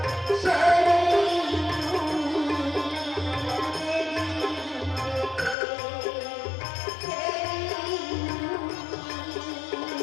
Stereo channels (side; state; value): right; drops out; at 5.6 s